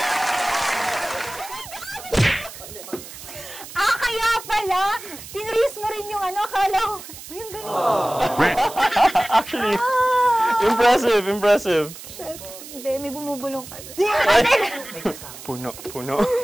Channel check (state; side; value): noise; right; hiss, 14 dB below the sound